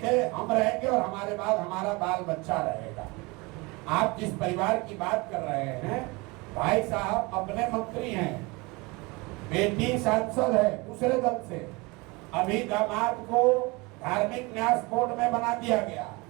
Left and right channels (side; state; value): left; quieter; 25.6 dB